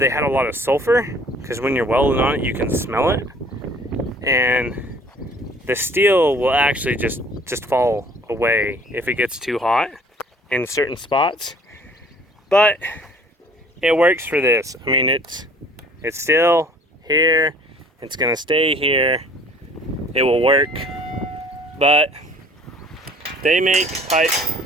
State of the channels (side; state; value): both; normal; correlation 0.53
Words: had a lot of sulfur, because when you're welding on it, you can smell it. And the steel will actually just fall away if it gets too hot in certain spots. But it works for this. I mean, it's still here. It's gonna stay here. It will work. But they make pipe.